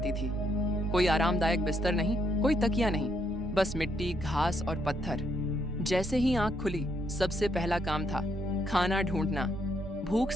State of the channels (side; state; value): right; noise; hum, 25 dB below the sound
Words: थी। कोई आरामदायक बिस्तर नहीं, कोई तकिया नहीं, बस मिट्टी, घास और पत्थर। जैसे ही आंख खुली, सबसे पहला काम था खाना ढूंढना। भूख